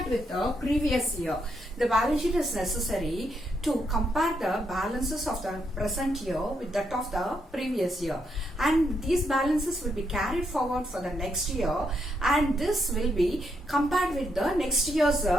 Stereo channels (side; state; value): both; normal; correlation 0.78